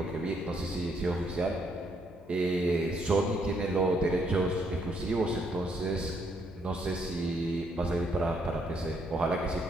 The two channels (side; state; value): both; normal; correlation 0.72